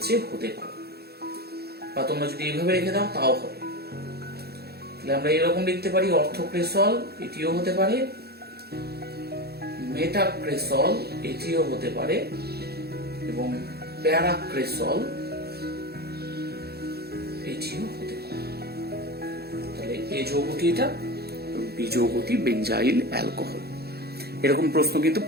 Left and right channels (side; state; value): left; late; 0.46 ms